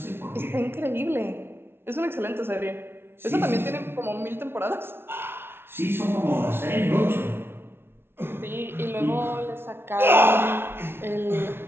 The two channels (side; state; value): left; late; 0.11 ms